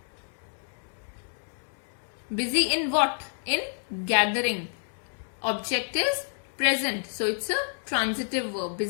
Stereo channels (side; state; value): right; silent; digital silence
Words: Busy in what? In gathering. Object is present. So it's a transitive verb.